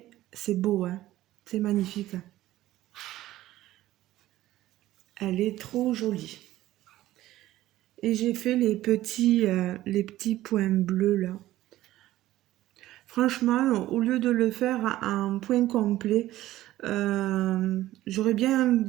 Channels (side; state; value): left; quieter; 15.1 dB